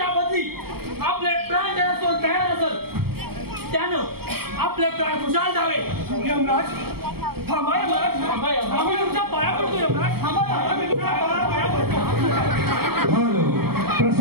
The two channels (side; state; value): left; late; 0.95 ms